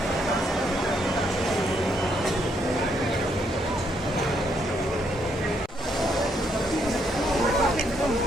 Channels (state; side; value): normal; both; correlation 0.74